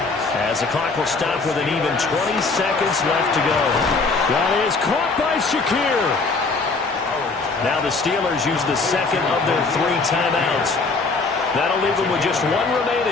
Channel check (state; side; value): quieter; right; 4.0 dB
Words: As the clock will stop with an even 20 seconds left to go. That is caught by Shakir. Now the Steelers use the second of their 3 timeouts. That'll leave them with just 1